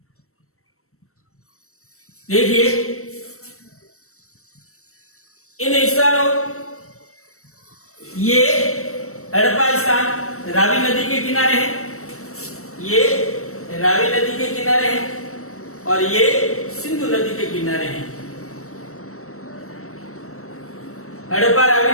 देखिए इन स्थानों, ये हड़प्पा स्थान रावी नदी के किनारे है, ये रावी नदी के किनारे है और ये सिंधु नदी के किनारे हैं। हड़प्पा रावी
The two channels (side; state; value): right; late; 0.63 ms